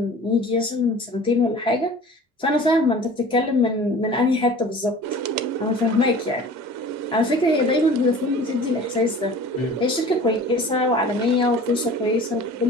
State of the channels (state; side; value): normal; both; correlation 0.42